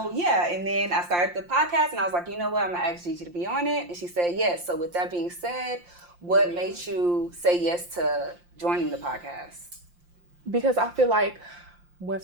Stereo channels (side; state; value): left; late; 5.7 ms